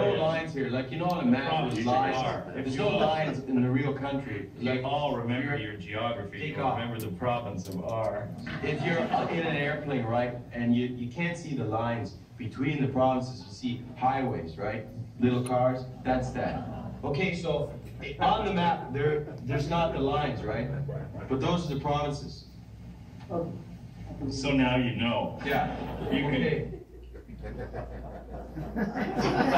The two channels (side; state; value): both; identical; correlation 1.00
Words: lines here. Like you know on a map there's lines. There's no lines in the real country. You Like all remember your geography. Take You off. remember the province of R. if you're in an airplane, right, and you can't see the lines between the provinces, you see highways, right? Little cars, that's that. Okay, so on the map, there's not the lines, right? But those are the provinces. So now you know. Yeah. You can. Okay.